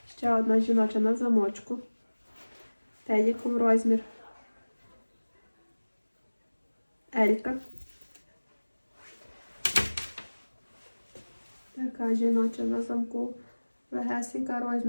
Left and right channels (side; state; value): both; inverted; correlation -1.00